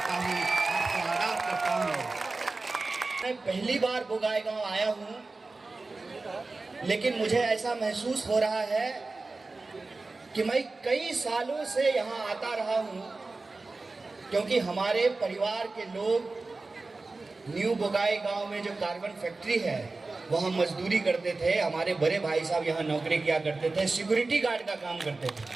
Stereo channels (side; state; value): left; quieter; 3.5 dB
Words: हूं, आपको आदाब करता हूं। मैं पहली बार बोगाई गांव आया हूं, लेकिन मुझे ऐसा महसूस हो रहा है कि मैं कई सालों से यहाँ आता रहा हूँ, क्योंकि हमारे परिवार के लोग न्यू बोगाई गांव में जो कार्बन फैक्ट्री है वहाँ मजदूरी करते थे। हमारे बड़े भाई साहब यहाँ नौकरी किया करते थे, सिक्योरिटी गार्ड का काम करते थे।